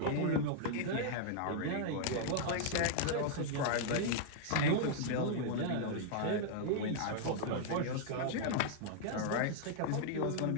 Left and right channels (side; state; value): both; different; correlation -0.01